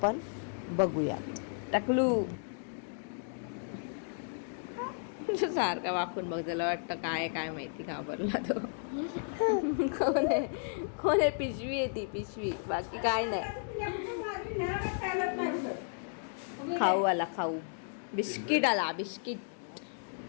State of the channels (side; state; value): right; silent; digital silence